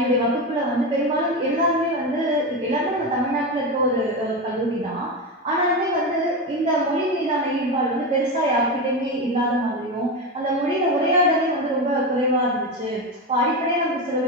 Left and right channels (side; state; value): both; normal; correlation 0.17